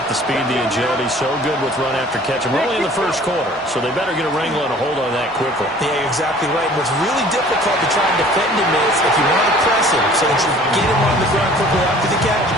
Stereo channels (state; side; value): normal; both; correlation 0.50